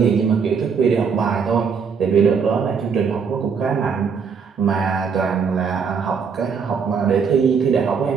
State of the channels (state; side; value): quieter; left; 6.1 dB